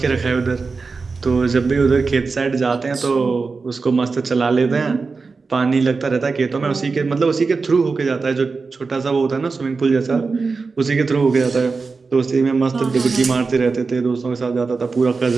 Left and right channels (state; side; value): quieter; left; 4.4 dB